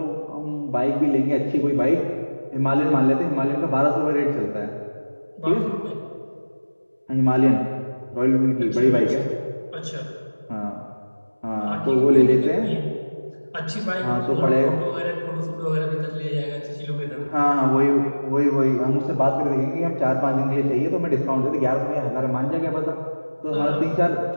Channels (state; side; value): inverted; both; correlation -1.00